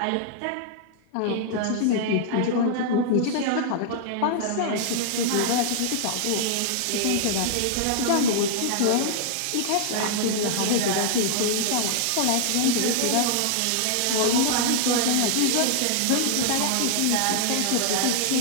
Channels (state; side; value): different; both; correlation -0.01